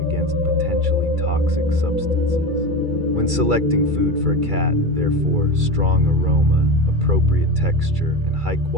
against potentially toxic substances. When selecting food for a cat, therefore, strong aroma, appropriate texture, and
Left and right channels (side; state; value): left; late; 2.3 ms